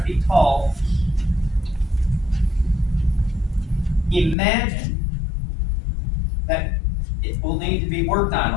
feet tall, imagine that it will need to be worked on,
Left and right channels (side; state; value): right; drops out; at 4.4 s